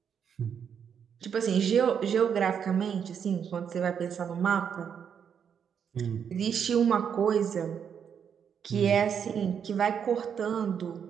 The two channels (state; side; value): quieter; left; 7.7 dB